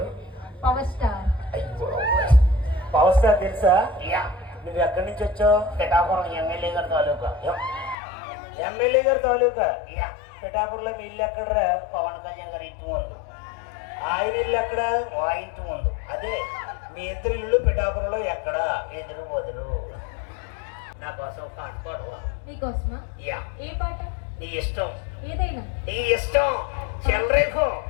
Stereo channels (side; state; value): right; drops out; at 8.0 s